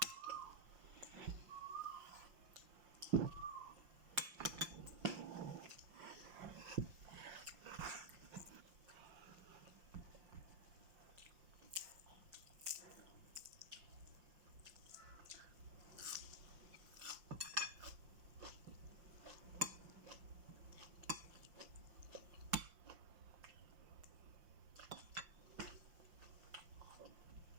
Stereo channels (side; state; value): left; late; 5.7 ms